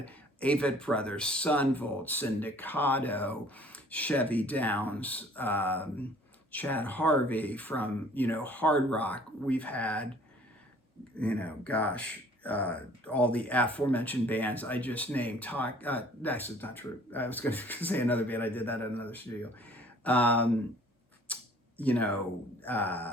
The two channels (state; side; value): normal; both; correlation 0.54